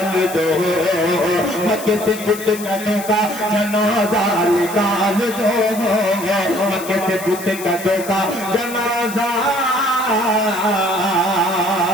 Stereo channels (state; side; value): noise; left; hiss, 12 dB below the sound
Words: दो, मक्के से बुत कदों का जनाजा निकाल दो, मक्के से बुत कदों का जनाजा